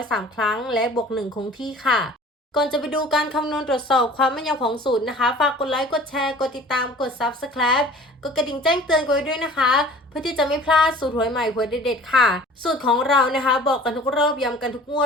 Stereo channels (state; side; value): normal; both; correlation 0.46